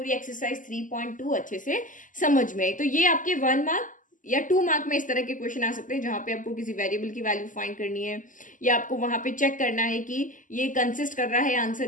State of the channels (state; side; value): late; right; 0.38 ms